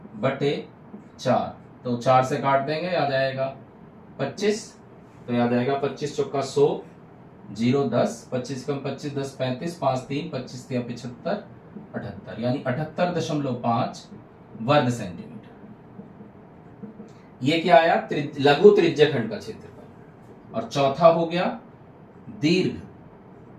बटे 4, तो 4 से काट देंगे आ जाएगा 25, तो याद आएगा 25 चौका 100 0 10, 25 कम 25 10 35, 5 3 25 3 75 78, यानी 78.5 वर्ग सेंटीमीटर। ये क्या आया? लघु त्रिज्य खंड का क्षेत्रफल। और चौथा हो गया दीर्घ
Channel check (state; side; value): identical; both; correlation 1.00